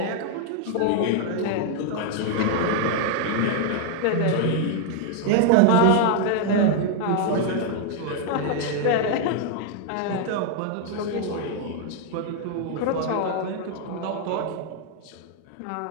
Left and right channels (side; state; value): both; different; correlation 0.00